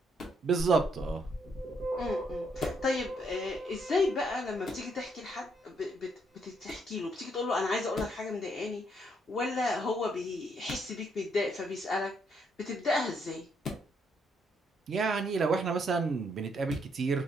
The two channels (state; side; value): normal; both; correlation 0.73